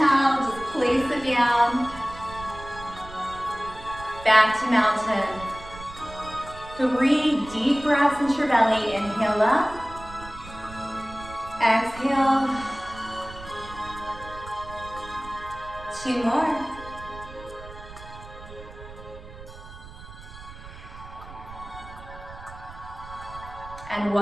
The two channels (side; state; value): right; noise; rumble, 16 dB below the sound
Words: just place it down. Back to mountain. 3 deep breaths into your belly. Inhale up. Exhale. 2 more. And